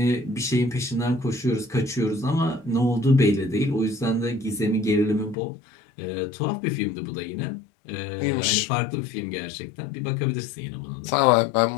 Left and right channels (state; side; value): drops out; right; at 5.4 s